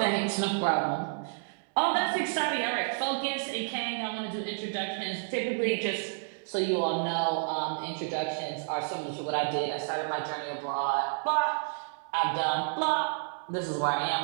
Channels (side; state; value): left; silent; digital silence